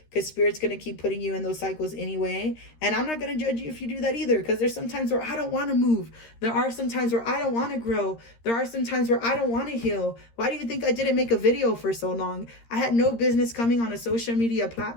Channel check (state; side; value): late; right; 13 ms